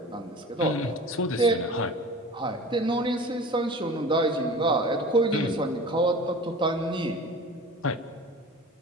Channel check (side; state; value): both; normal; correlation 0.38